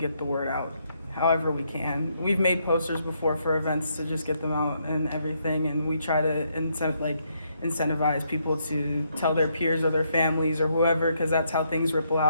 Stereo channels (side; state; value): both; inverted; correlation -0.75